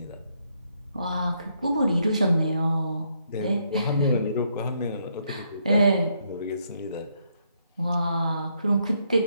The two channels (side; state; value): both; inverted; correlation -0.75